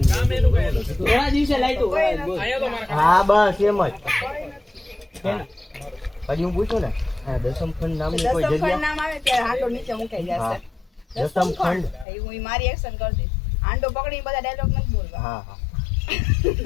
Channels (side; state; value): right; drops out; at 12.1 s